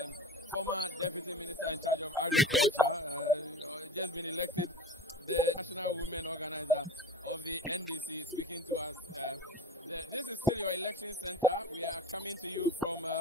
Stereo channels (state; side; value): normal; both; correlation 0.36